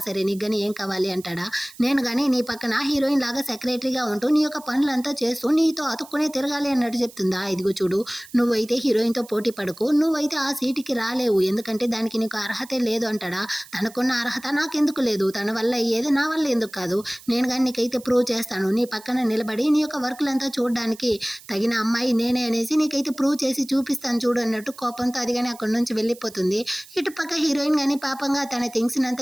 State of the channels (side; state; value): right; noise; hiss, 21 dB below the sound